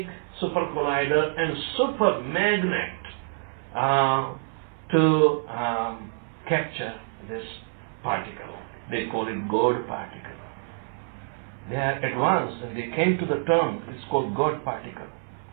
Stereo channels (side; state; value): left; silent; 57 dB below the other